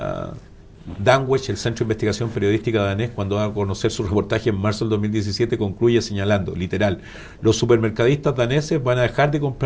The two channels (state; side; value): identical; both; correlation 1.00